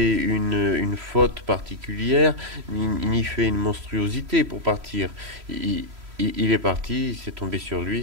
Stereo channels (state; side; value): late; left; 3.0 ms